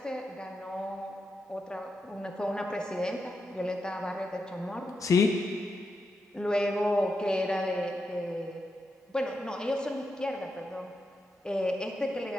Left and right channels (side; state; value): both; normal; correlation 0.86